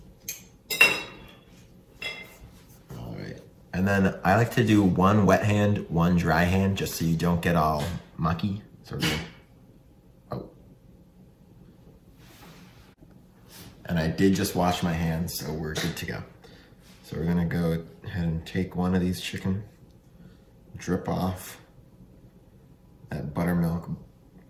And then I like to do 1 wet hand, 1 dry hand, just so you don't get all mucky. So And I did just wash my hands, so we're good to go. So we're gonna go ahead and take one of these chicken, drip off that buttermilk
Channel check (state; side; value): identical; both; correlation 1.00